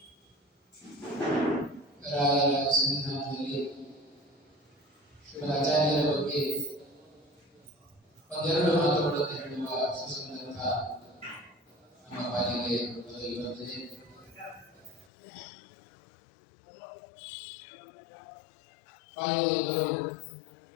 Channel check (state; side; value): drops out; right; at 15.1 s